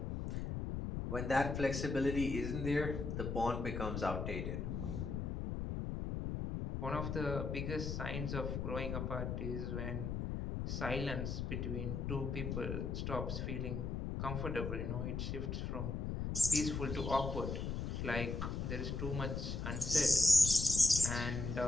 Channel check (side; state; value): left; noise; rumble, 3 dB below the sound